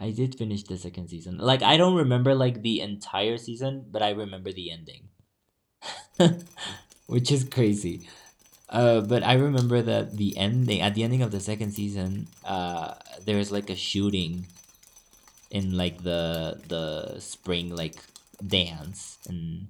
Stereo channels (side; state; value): both; identical; correlation 1.00